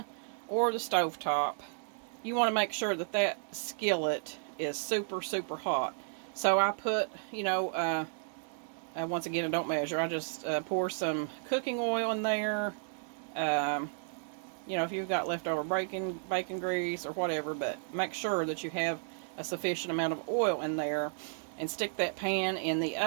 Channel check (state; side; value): silent; left; digital silence